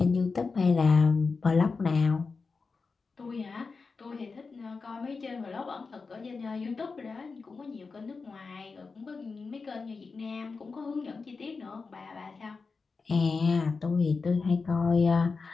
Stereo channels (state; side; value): quieter; right; 4.5 dB